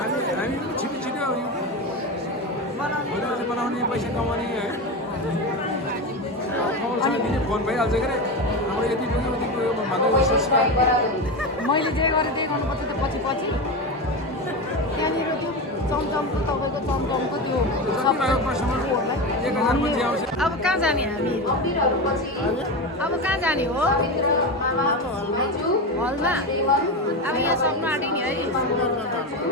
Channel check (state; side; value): normal; both; correlation 0.19